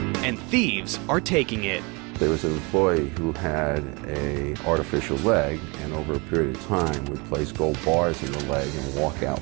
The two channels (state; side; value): quieter; left; 28.7 dB